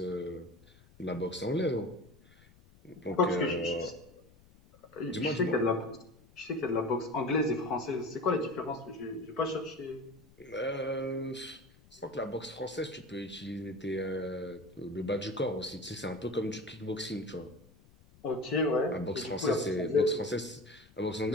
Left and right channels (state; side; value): noise; left; rumble, 26 dB below the sound